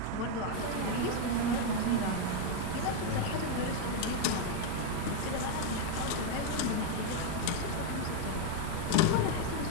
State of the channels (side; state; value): both; different; correlation 0.01